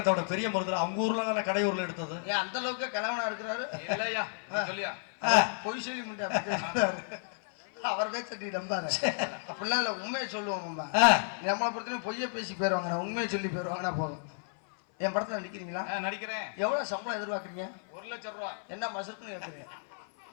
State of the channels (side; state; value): right; silent; 56 dB below the other